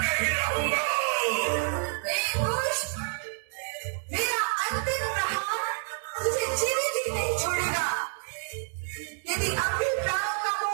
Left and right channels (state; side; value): silent; left; digital silence